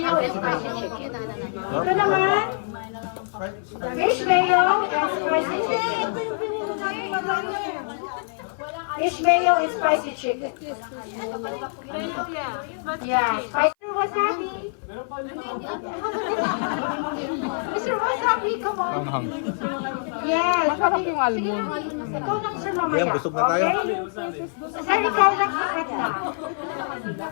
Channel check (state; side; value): silent; right; 57 dB below the other